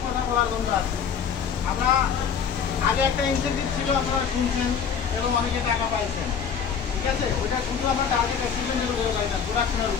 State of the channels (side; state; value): right; quieter; 7.0 dB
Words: কথা বলার জন্য আছি। আমরা আগে একটা ইনসেন্টিভ ছিল, আপনারা শুনছেন এবং অনেকে টাকা পাইছেন, ঠিক আছে? ওইটা শুধু আমরা টার্গেট অ্যাচিভমেন্টের উপরে পাইতাম, প্রোডাকশনের